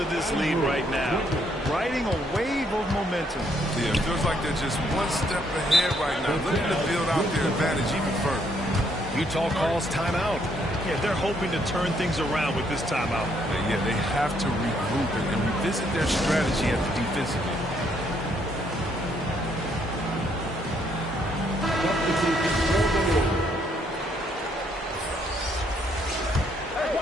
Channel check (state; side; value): normal; both; correlation 0.71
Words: this lead right now. Riding a wave of momentum. Yeah, it feels like they're just one step ahead right now, looking to build out their advantage even further. Utah calls timeout. Yeah, they're hoping to turn things around with this timeout. Yeah, they have to regroup and revisit their strategy at the defensive end. Hey,